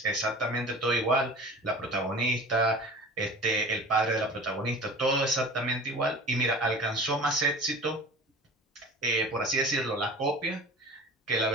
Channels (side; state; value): both; normal; correlation 0.39